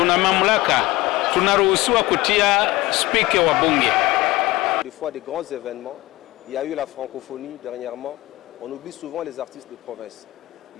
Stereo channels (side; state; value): right; quieter; 19.7 dB